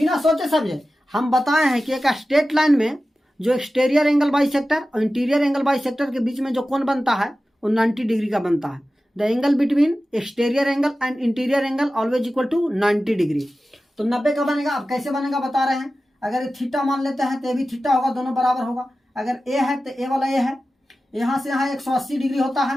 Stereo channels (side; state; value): both; normal; correlation 0.94